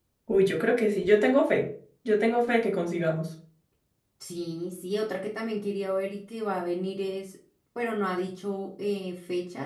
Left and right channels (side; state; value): both; identical; correlation 1.00